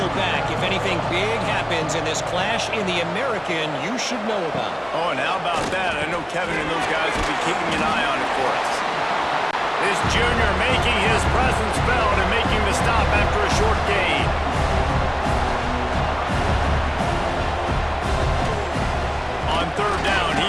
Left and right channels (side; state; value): both; identical; correlation 1.00